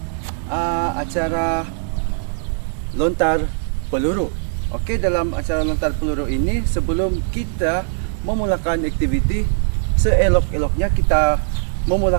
acara lontar peluru. Okey, dalam acara lontar peluru ini, sebelum kita memulakan aktiviti, seelok-eloknya kita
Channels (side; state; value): left; silent; digital silence